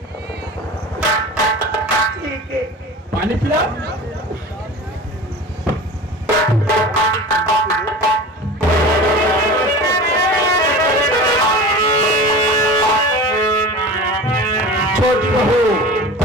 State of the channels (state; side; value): normal; both; correlation 0.35